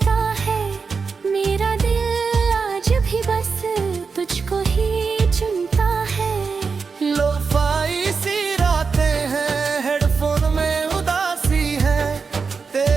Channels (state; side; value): quieter; left; 5.1 dB